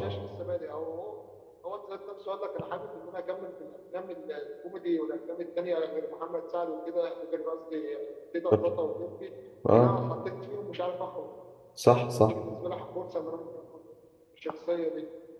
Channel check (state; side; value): identical; both; correlation 1.00